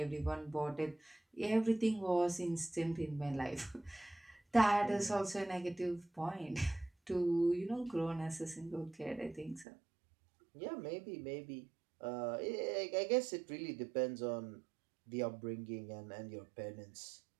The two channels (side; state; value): left; drops out; at 9.7 s